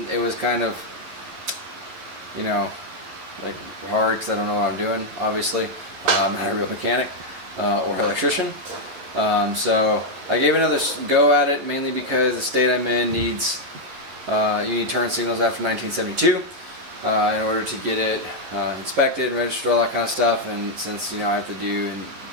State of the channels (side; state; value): left; late; 11 ms